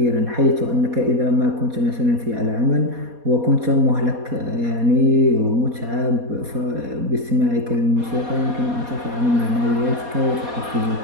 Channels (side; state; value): left; late; 4.2 ms